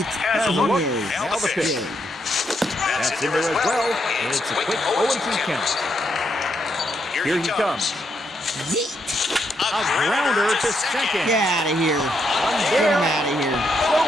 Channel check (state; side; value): normal; both; correlation 0.78